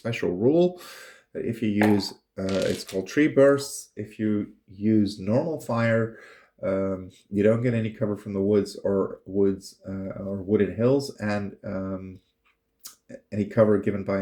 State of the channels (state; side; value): identical; both; correlation 1.00